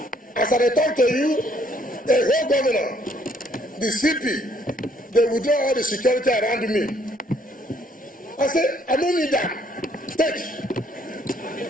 As I talk to you, the whole governor, the CP, they withdraw all the security around me. I said, I don't need that. Take.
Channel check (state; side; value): normal; both; correlation 0.66